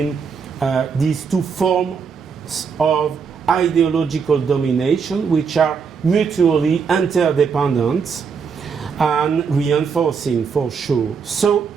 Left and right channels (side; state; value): left; quieter; 5.9 dB